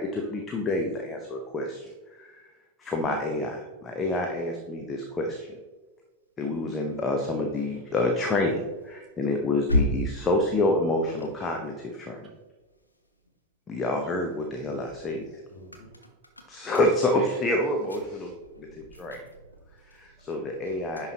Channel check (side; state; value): both; normal; correlation 0.21